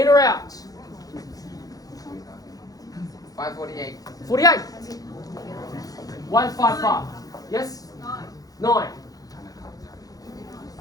or out? 548. 48. 155. Yes? 9.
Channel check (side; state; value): right; late; 0.18 ms